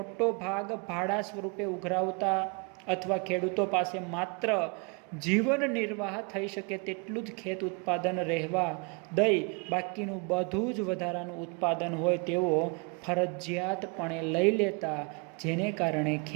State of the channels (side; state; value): left; quieter; 32.2 dB